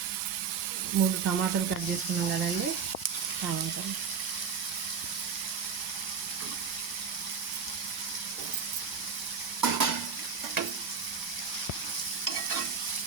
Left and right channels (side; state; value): left; quieter; 6.2 dB